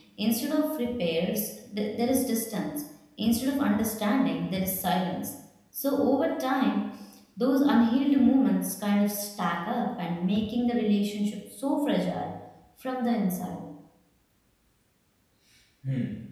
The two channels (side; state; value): both; identical; correlation 1.00